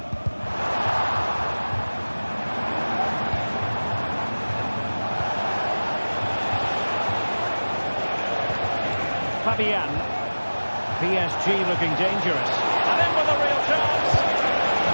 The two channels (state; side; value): inverted; both; correlation -1.00